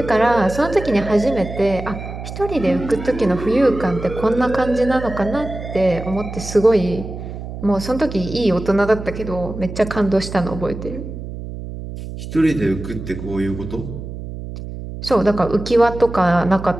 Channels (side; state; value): right; noise; hum, 9 dB below the sound